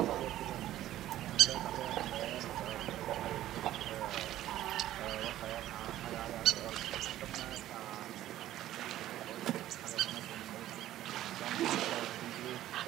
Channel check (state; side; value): quieter; left; 13.6 dB